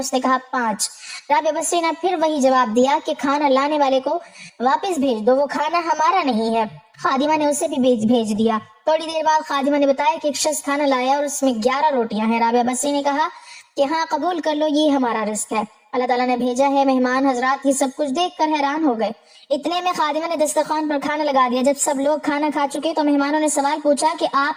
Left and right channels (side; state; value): both; identical; correlation 1.00